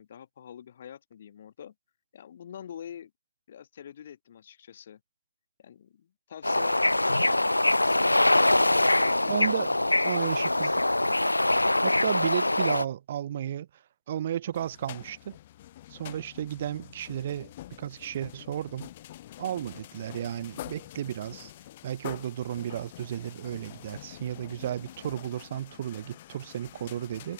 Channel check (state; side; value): inverted; both; correlation -0.90